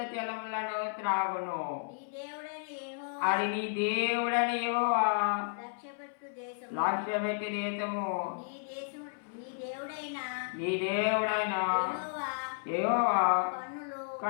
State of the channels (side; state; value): right; silent; 56 dB below the other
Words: జలములను త్రాగును. అది నీ దేవుడని యెహోవా లక్ష్యపెట్టు దేశము. నీ దేవుడైన యెహోవా